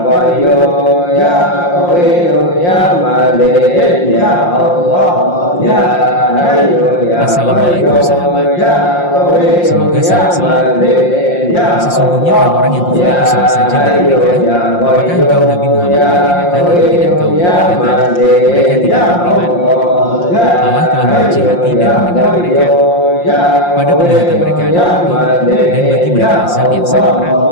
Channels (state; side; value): late; right; 5.7 ms